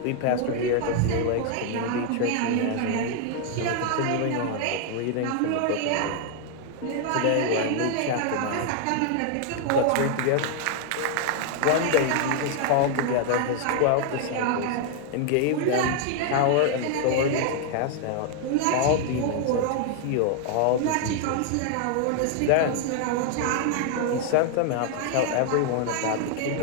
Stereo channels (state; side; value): different; both; correlation 0.00